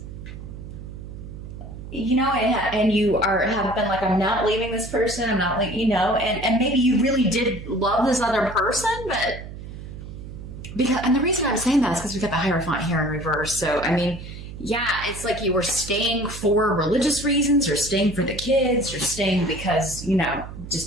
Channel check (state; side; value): noise; right; hum, 12 dB below the sound